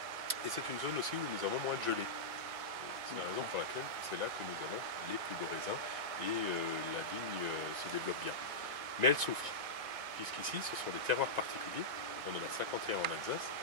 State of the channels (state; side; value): late; left; 1.9 ms